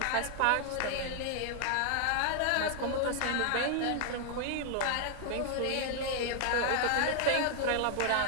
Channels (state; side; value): different; both; correlation 0.00